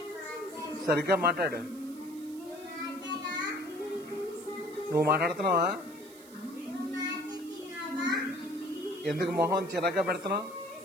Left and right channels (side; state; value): right; noise; hiss, 21 dB below the sound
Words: సరిగ్గా మాట్లాడు. నువ్వు మాట్లాడుతున్నావా? ఎందుకు మొహం చిరాగ్గా పెడుతున్నావు?